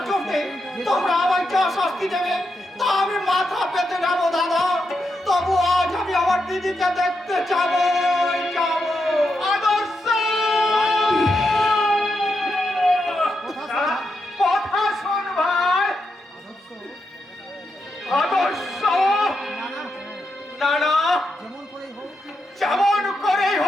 জন্য তোমরা আমায় যা শাস্তি দেবে তা আমি মাথা পেতে নেবো দাদা। তবু আজ আমি আমার দিদিকে দেখতে যাবো। আদর্শ কথা শোন ভাই। আদর্শ না না, যেমন করেই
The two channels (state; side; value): normal; both; correlation 0.84